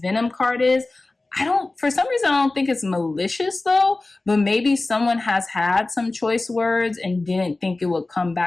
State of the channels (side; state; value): right; quieter; 3.1 dB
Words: card is. For some reason, I don't think it's malicious though, but maybe someone has had some choice words and didn't think it would come